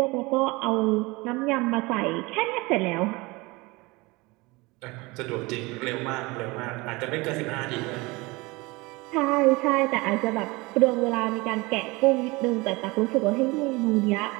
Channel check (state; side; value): quieter; left; 23.9 dB